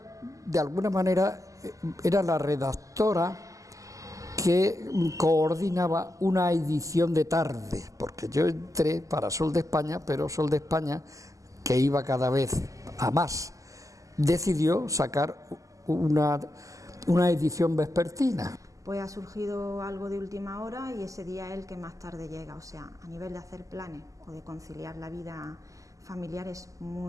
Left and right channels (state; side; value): late; left; 0.16 ms